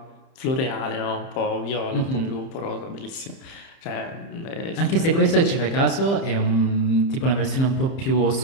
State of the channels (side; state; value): right; late; 30 ms